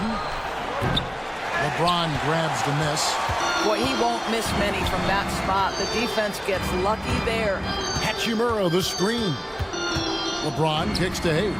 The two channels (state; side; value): identical; both; correlation 1.00